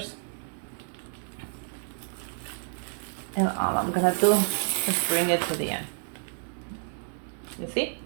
and all I'm gonna do is bring it to the end. You see?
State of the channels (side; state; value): left; silent; 58 dB below the other